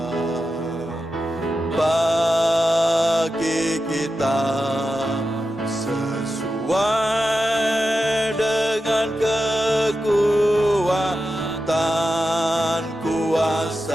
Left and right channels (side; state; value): both; normal; correlation 0.91